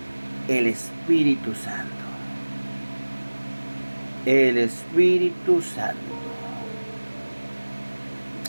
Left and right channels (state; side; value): inverted; both; correlation -1.00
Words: El Espíritu Santo. El Espíritu Santo.